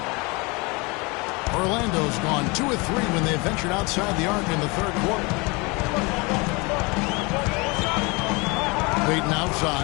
Orlando's gone 2 of 3 when they ventured outside the arc in the 3rd quarter. Payton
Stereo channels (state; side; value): quieter; right; 27.4 dB